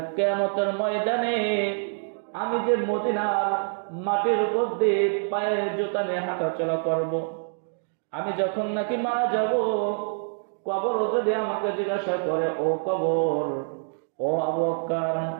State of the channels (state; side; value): silent; left; digital silence